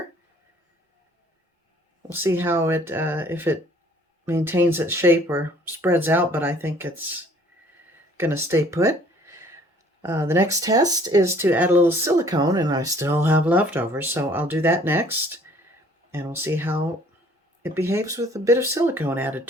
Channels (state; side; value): normal; both; correlation 0.56